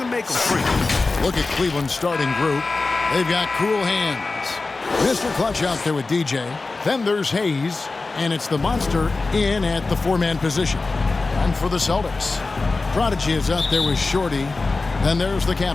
make them free. Look at Cleveland's starting group. They've got cool hands. Mr. Clutch out there with DJ. Then there's Hayes, and it's the monster in at the four-man position. And for the Celtics, Prodigy is out there with Shorty. Then there's the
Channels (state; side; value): quieter; right; 3.7 dB